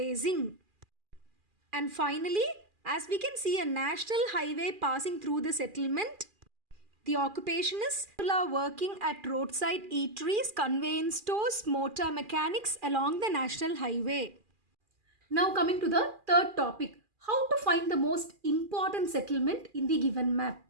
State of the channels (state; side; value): late; left; 2.4 ms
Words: And finally, as we can see a national highway passing through the settlement, the occupation is people are working at roadside eateries, conveyance stores, motor mechanics along the national highway. Now coming to the third topic, how to find the most important settlement in the given map.